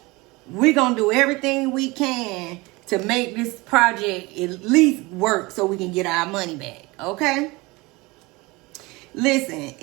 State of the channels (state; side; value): quieter; left; 23.4 dB